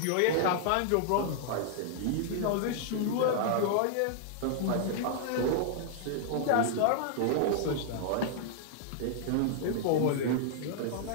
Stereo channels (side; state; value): both; different; correlation -0.01